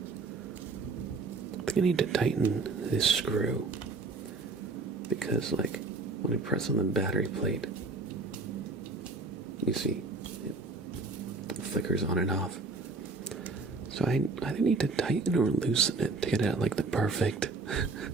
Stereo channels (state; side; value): quieter; left; 3.7 dB